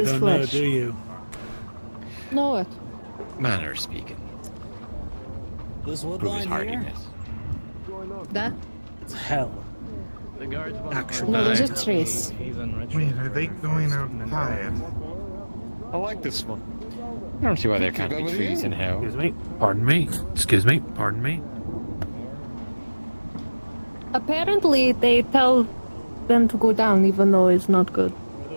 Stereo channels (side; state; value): both; inverted; correlation -1.00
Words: is don't flesh. know, do you? Know what? Manner speaking. This wood Prove his line hardiness. That? It's hell. Actually. No, those are trees. Wait, are they going outside? I like this one. I don't see why there can't be trees in hell. Excuse me. Pardon me. Excuse me. Pardon me. Apparently, they tell them to go down even though it's not good.